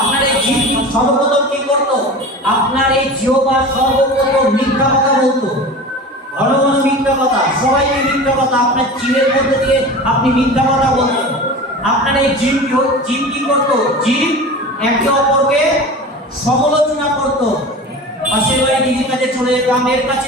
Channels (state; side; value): normal; both; correlation 0.34